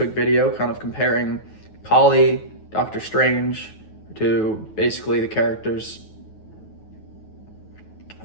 video kind of comparing Kali, Doctor Strange, to basically the characters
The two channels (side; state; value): right; late; 9.3 ms